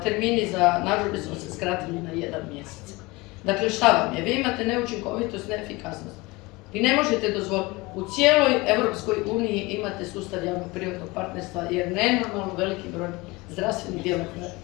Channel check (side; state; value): right; quieter; 23.2 dB